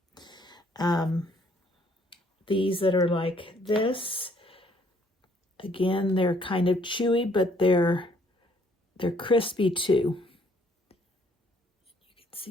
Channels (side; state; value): both; normal; correlation 0.64